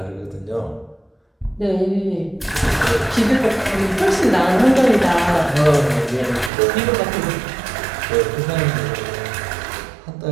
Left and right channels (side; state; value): left; drops out; at 6.5 s